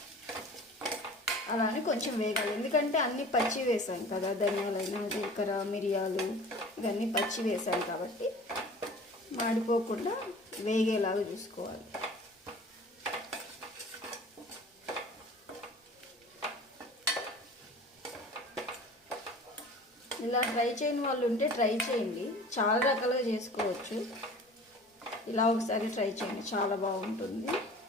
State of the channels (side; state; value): both; normal; correlation 0.43